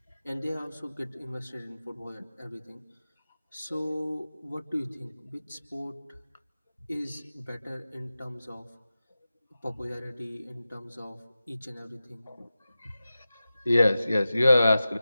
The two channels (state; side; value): inverted; both; correlation -0.94